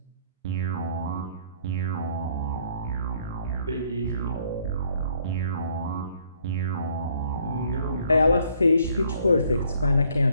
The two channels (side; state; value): both; inverted; correlation -0.64